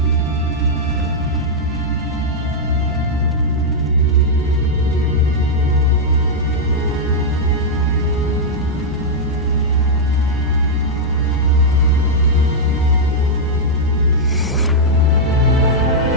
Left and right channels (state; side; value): normal; both; correlation -0.05